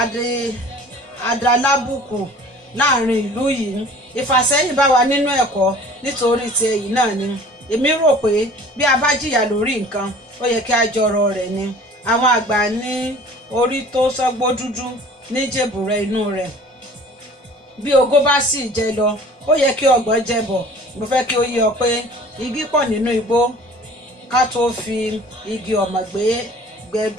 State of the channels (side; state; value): both; normal; correlation 0.47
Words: adalábùkù láàrin ìlú yìí. Ìfàsẹ́yìn bá wa nínú ẹ̀kọ́ nítorí ti èyí náà ni. Èmi rò pé bí a bá jìyà lórí nǹkan, ó yẹ kí a jọrọ rẹ̀ ni. Àwọn àgbà ní orí tó sọ́gbó dúdú ní jèbùrẹ́ inú rẹ̀. Bí ogó bá sì jẹ lọ, ó yẹ kí ọgbọ̀n jẹ bọ̀. Mo fẹ́ kí ó yé ọ pé igi pọ̀ nínú igbó ká tó fi igi ọ̀mọ̀